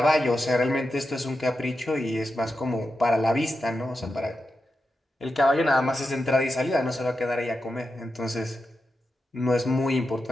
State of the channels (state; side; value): normal; both; correlation 0.89